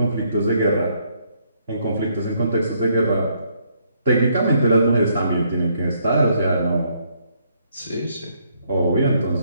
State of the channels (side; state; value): both; inverted; correlation -0.71